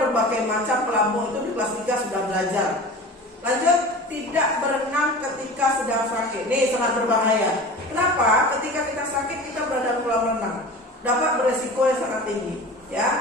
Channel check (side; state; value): both; normal; correlation 0.36